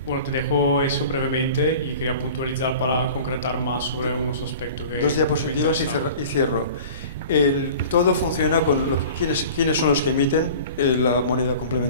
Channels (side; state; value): both; inverted; correlation -0.41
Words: bueno, te dejo eso brevemente y quería puntualizar para concretar más sobre unos aspectos que 2 diapositivas y cierro. Todo funciona con quiénes son los que emiten la moneda